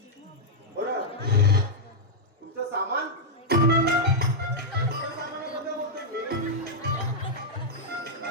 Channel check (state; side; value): normal; both; correlation -0.05